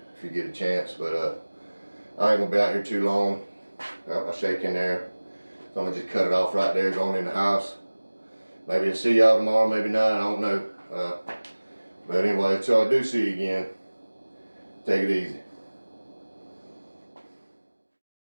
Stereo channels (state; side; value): inverted; both; correlation -1.00